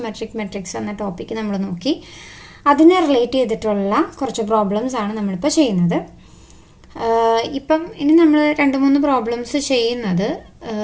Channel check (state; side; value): identical; both; correlation 1.00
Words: മെട്രിക്സ് എന്ന ടോപ്പിക്ക് നമ്മൾ നോക്കി. അതിനെ റിലേറ്റ് ചെയ്തിട്ടുള്ള കുറച്ച് പ്രോബ്ലംസ് ആണ് നമ്മളിപ്പോൾ ചെയ്യുന്നത്. ഇപ്പം ഇനി നമ്മൾ 2-3 പ്രോബ്ലംസ് ചെയ്യുന്നത്